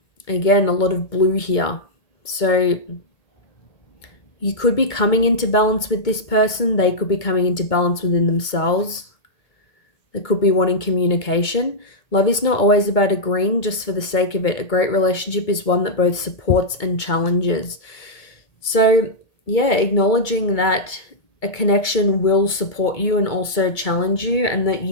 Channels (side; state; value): right; late; 2.2 ms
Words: Again, a lot of blue here. So you could be coming into balance with this person. They could be coming into balance within themselves. They could be wanting communication. Love is not always about agreeing just for the sake of it. A great relationship is one that both supports and challenges. So, yeah, acknowledging that a connection will support you and also challenge you, and that